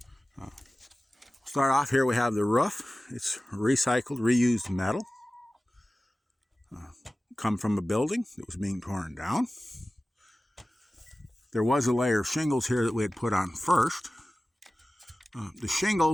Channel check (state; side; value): normal; both; correlation 0.97